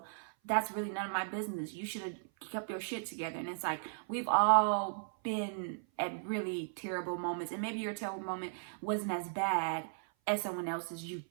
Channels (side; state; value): left; silent; 54 dB below the other